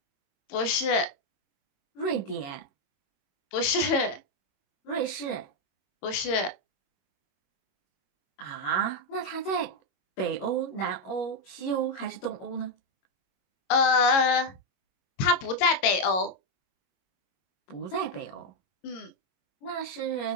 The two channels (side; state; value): right; late; 22 ms